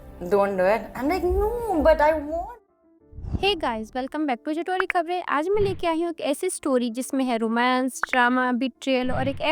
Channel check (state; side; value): identical; both; correlation 1.00